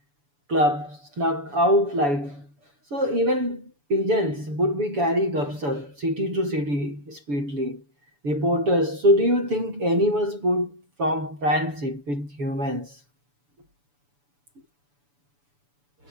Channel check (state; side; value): late; left; 7.0 ms